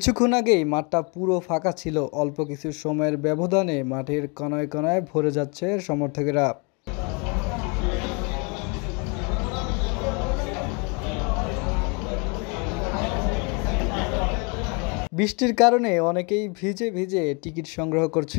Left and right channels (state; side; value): quieter; right; 32.8 dB